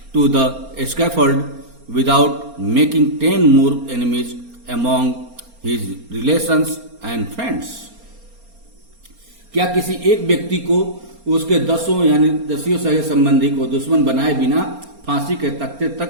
to the scaffold without making 10 more enemies among his relations and friends? क्या किसी एक व्यक्ति को उसके दसियों सगे संबंधी को दुश्मन बनाए बिना फांसी के तख्ते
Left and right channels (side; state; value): left; late; 4.3 ms